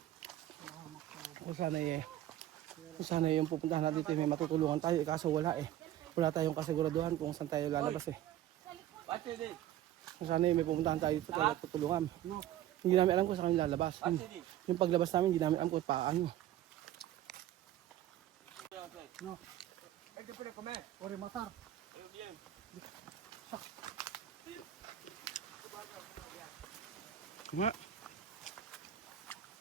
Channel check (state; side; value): quieter; left; 12.8 dB